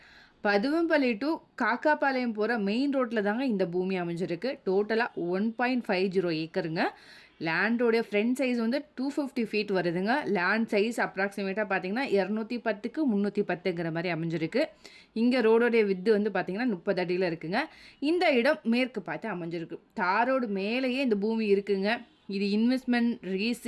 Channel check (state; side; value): identical; both; correlation 1.00